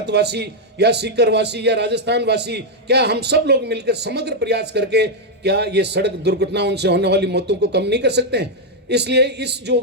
या सीकरवासी या राजस्थान वासी, क्या हम सब लोग मिलकर समग्र प्रयास करके क्या ये सड़क दुर्घटनाओं से होने वाली मौतों को कम नहीं कर सकते हैं? इसलिए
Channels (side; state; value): both; normal; correlation 0.00